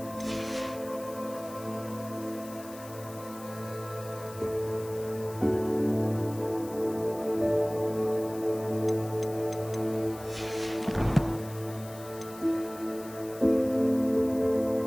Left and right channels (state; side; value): noise; left; hiss, 18 dB below the sound